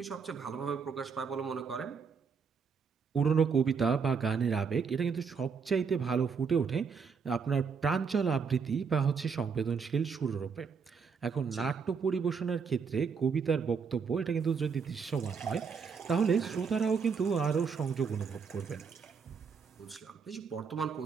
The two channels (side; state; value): left; quieter; 5.8 dB